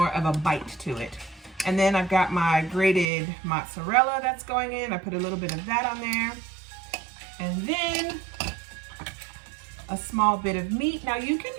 of a bite to it. And then I've got my grated mozzarella that's going in. I put a little bit of that on there. And then a small bit of meat. Now you can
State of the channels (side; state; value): left; drops out; at 3.1 s